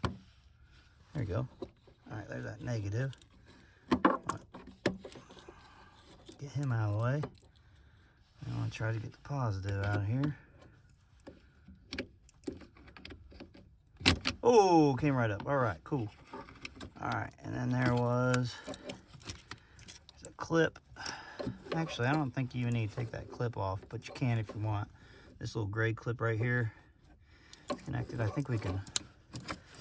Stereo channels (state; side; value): identical; both; correlation 1.00